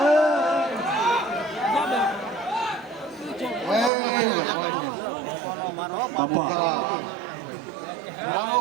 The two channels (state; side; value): drops out; left; at 3.9 s